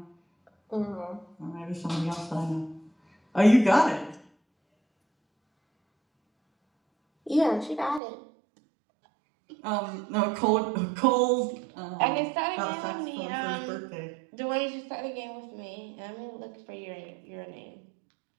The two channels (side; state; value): left; drops out; at 8.0 s